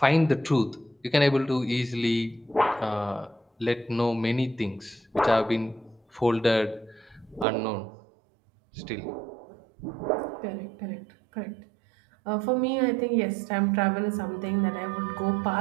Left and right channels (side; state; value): left; drops out; at 7.5 s